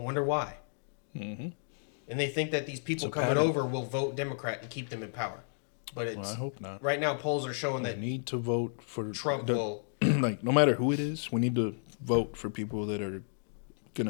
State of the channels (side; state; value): right; silent; digital silence